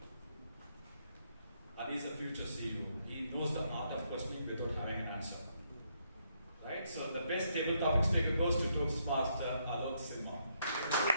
And he's a future CEO. He knows the art of questioning without having an answer. Right? So the best table topic speaker goes to Toastmaster Alok Sinha.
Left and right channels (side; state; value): both; inverted; correlation -0.75